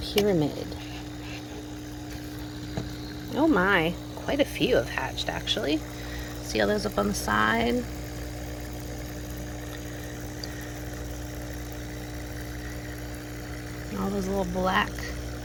Oh my, quite a few have hatched actually. See all those up on the side? All those little black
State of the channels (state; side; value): identical; both; correlation 1.00